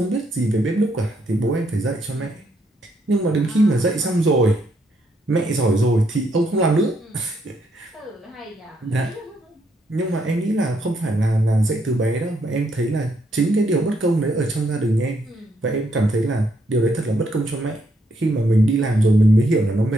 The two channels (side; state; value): both; normal; correlation 0.74